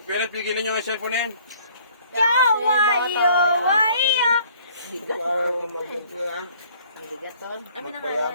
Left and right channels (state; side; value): inverted; both; correlation -0.57